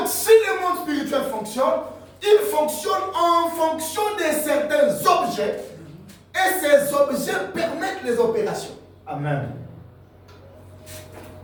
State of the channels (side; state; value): both; identical; correlation 1.00